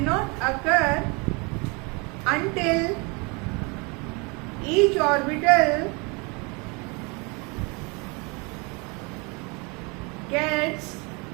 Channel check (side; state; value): left; quieter; 29.8 dB